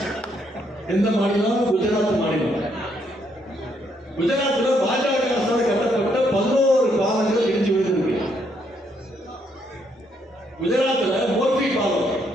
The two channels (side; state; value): both; normal; correlation 0.73